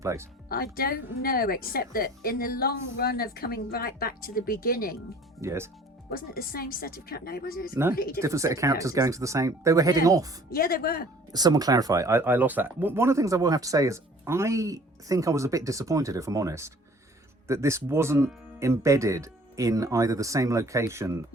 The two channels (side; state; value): both; normal; correlation 0.51